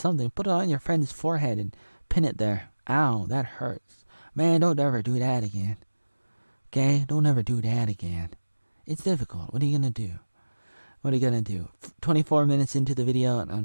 Put it on your friend's forehead and pin it there. Ow, that hurts. Man, don't ever do that again. Okay? Don't ever do that again. It's difficult. What are you gonna do? 24 minutes into the video,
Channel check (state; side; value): inverted; both; correlation -1.00